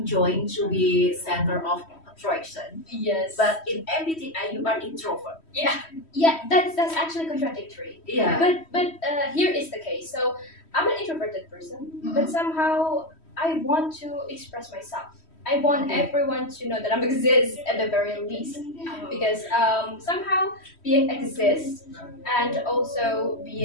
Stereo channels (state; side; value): late; right; 3.1 ms